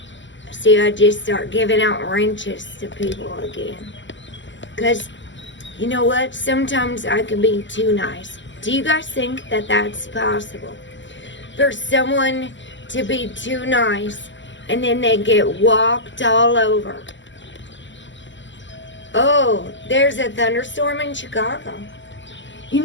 See, I just start giving out wrenches to people again. Because, you know what? Sometimes I can be too nice. Do you guys think that that's possible? For someone to be too nice and then they get walked all over. Oh, there's a thunderstorm in Chicago. You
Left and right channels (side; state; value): right; late; 0.54 ms